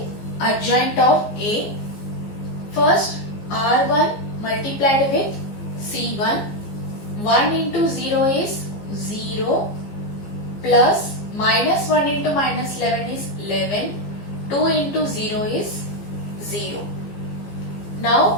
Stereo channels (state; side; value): late; right; 15 ms